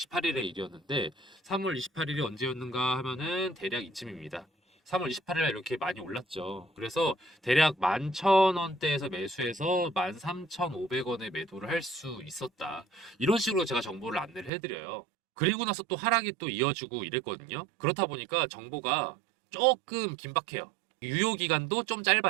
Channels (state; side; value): drops out; left; at 14.5 s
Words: 일이었는데 3월 28일이 언제였는가 하면은 대략 이쯤입니다. 3월 28일 이렇게 많이 올랐죠. 그래서 대략 11,000원대에서 매수해서 13,500원에 매도를 할 수 있었다. 이런 식으로 제가 정보를 안내를 해드려요. 그리고 나서 또 하락이 또 이어지고 이랬거든요. 그렇다 보니까 정보가 조금 긴박해요. 유효 기간도 좀